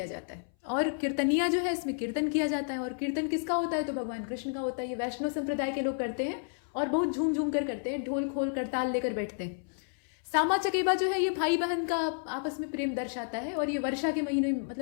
जाता है और कीर्तनिया जो है इसमें कीर्तन किया जाता है। और कीर्तन किसका होता है? तो भगवान कृष्ण का होता है। ये वैष्णव संप्रदाय के लोग करते हैं और बहुत झूम झूम कर करते हैं, ढोल खोल कर ताल लेकर बैठते हैं। सामा चकेबा जो है ये भाई बहन का आपस में प्रेम दर्शाता है और ये वर्षा के महीने में,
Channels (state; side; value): silent; right; 57 dB below the other